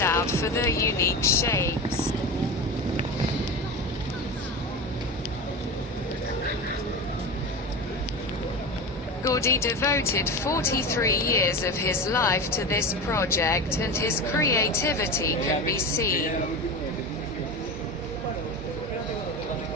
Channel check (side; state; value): both; normal; correlation 0.25